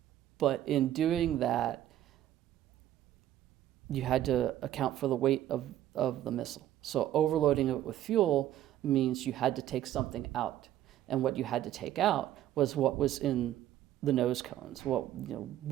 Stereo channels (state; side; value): quieter; left; 12.6 dB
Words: But in doing that, you had to account for the weight of the missile. So overloading it with fuel means you had to take something out. And what you had to take out was what was in the nose cones,